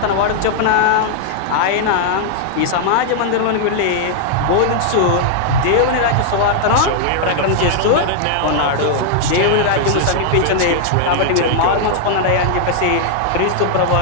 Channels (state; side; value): different; both; correlation -0.01